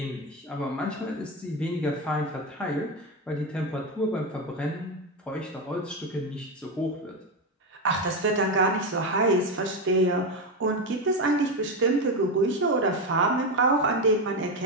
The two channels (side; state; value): both; normal; correlation 0.13